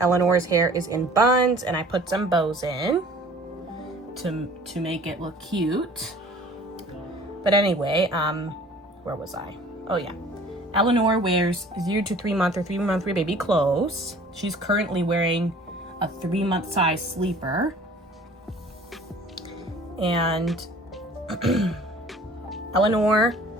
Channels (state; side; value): normal; both; correlation 0.49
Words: hair is in buns and I put some bows in to make it look cute. But anyway, where was I? Oh yeah. Eleanor wears 0 to 3 month or 3 month baby clothes. She's currently wearing a 3-month size sleeper. And Eleanor